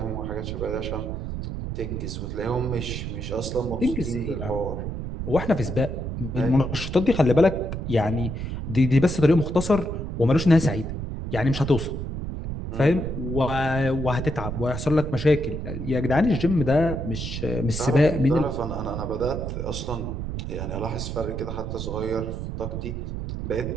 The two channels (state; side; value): noise; right; rumble, 5 dB below the sound